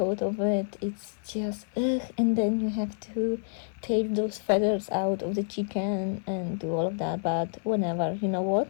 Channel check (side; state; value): right; silent; 59 dB below the other